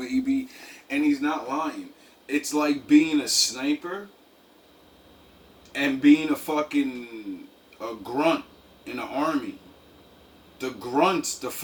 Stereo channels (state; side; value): identical; both; correlation 1.00